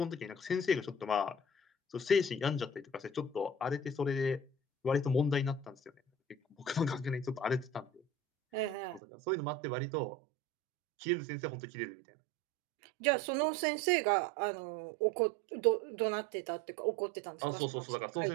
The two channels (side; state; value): left; drops out; at 9.0 s